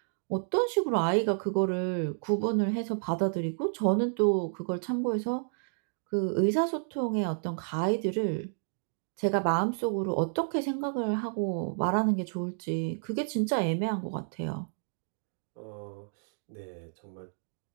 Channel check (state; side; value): silent; left; digital silence